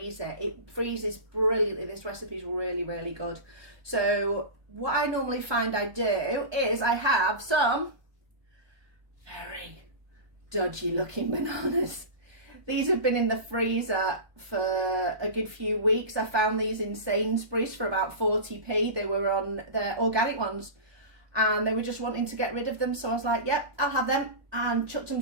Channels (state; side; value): late; left; 1.2 ms